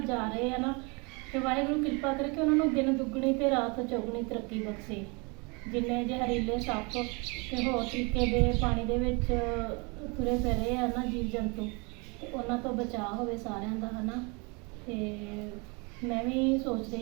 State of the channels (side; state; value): left; quieter; 30.3 dB